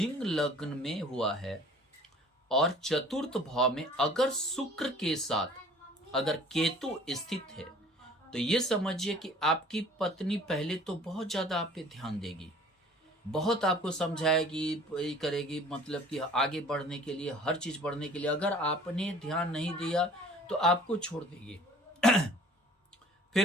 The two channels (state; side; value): normal; both; correlation 0.50